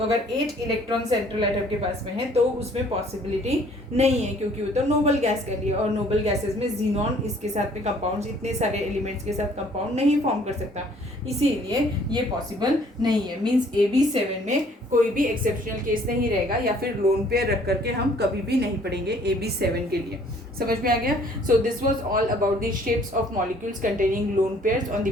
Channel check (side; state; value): both; normal; correlation 0.58